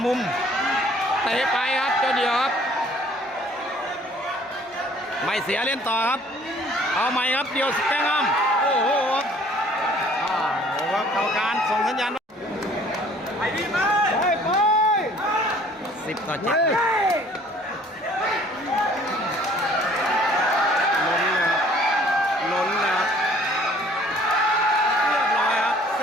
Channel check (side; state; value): both; normal; correlation 0.56